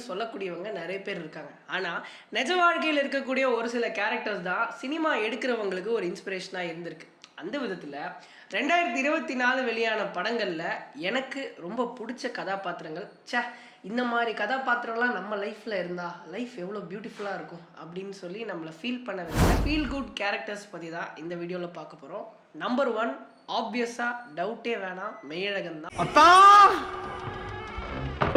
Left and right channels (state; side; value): identical; both; correlation 1.00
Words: சொல்லக்கூடியவங்க நிறைய பேர் இருக்காங்க. ஆனால் நிஜ வாழ்க்கையில் இருக்கக்கூடிய ஒரு சில கேரக்டர்ஸ் தான் சினிமா எடுக்கிறவங்களுக்கு ஒரு இன்ஸ்பிரேஷனாக இருந்திருக்கு. அந்த விதத்தில் 2024 வெளியான படங்களில் எனக்கு ரொம்ப பிடிச்ச கதாபாத்திரங்கள், இந்த மாதிரி கதாபாத்திரம்லாம் நம்ம லைஃப்பில் இருந்தால் லைஃப் எவ்வளோ பியூட்டிஃபுல்லாக இருக்கும் அப்படின்னு சொல்லி நம்மளை ஃபீல் பண்ண வேண்டிய ஃபீல் குட் கேரக்டர்ஸ் பற்றி தான் இந்த வீடியோவில் பார்க்க போகிறோம். நம்பர் 1 ஆப்வியஸாக டவுட்டே வேணாம், மெய்யழகன் தான்.